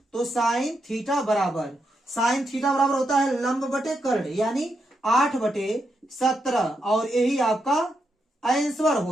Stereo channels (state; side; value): normal; both; correlation 0.83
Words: तो साइन थीटा बराबर होता है लंब बटे कर्ण, यानी 8/17, और यही आपका आंसर